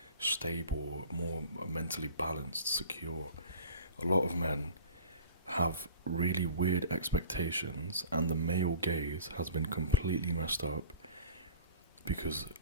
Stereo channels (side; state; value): both; inverted; correlation -0.43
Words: stable, more mentally balanced, secure. A lot of men have really weird expectations, and the male gaze has been completely messed up because